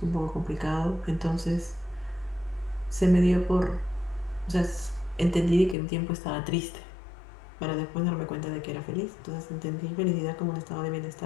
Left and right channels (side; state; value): right; drops out; at 5.8 s